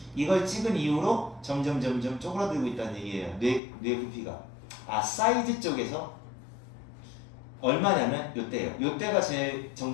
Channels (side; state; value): right; drops out; at 3.6 s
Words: 이걸 찍은 이후로 점점 쪼그라들고 있다는 얘기예요. 뇌 부피가. 사이즈 쪽에서 얼마냐면 요때예요. 요때가 제